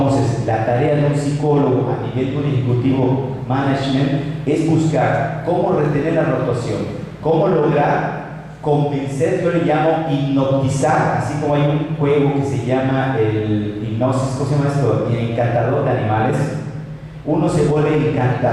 la tarea de un psicólogo a nivel de un ejecutivo management es buscar cómo retener la rotación, cómo lograr convencer, yo le llamo hipnotizar, así como hay un juego que se llama el hipnosis, ¿cómo se llama esto? El encantador de animales. Uno se vuelve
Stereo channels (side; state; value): both; identical; correlation 1.00